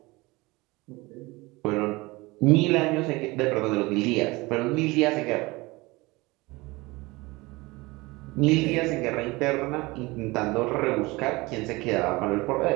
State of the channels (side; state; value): left; quieter; 22.7 dB